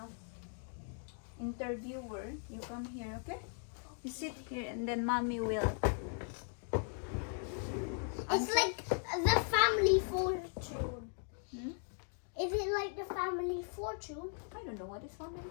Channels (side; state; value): right; silent; 52 dB below the other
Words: interviewer, you come here, okay? You sit here and then mommy will. It's like the family fortune. Hmm? Is it like the family fortune? I don't know what is family.